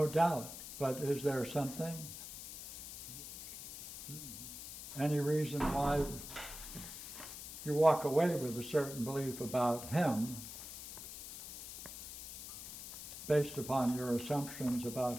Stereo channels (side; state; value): left; noise; hiss, 10 dB below the sound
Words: doubt. But is there something? Any reason why you walk away with a certain belief about him based upon your assumptions